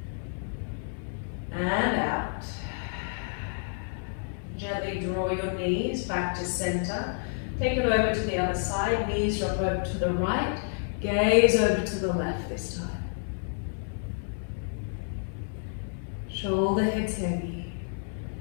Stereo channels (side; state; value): right; silent; 58 dB below the other